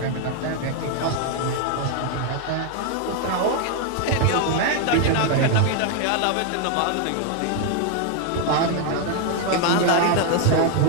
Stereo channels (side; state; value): both; different; correlation 0.00